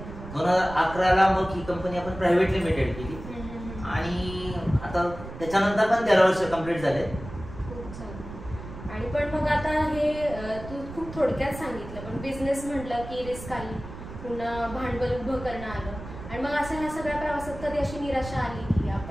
2011ला मग ही कंपनी आपण प्रायव्हेट लिमिटेड केली आणि आता त्याच्यानंतर पण 13 वर्ष कंप्लीट झाले. आणि पण मग आता हे तू खूप थोडक्यात सांगितलं, पण बिझनेस म्हटलं की रिस्क आली, पुन्हा भांडवल उभं करणं आलं. आणि मग असं ह्या सगळ्या प्रवासात कधी अशी निराशा आली की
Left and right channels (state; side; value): noise; right; rumble, 12 dB below the sound